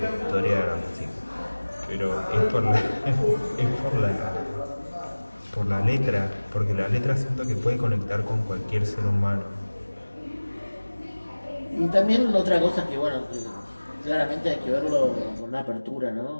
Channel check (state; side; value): inverted; both; correlation -1.00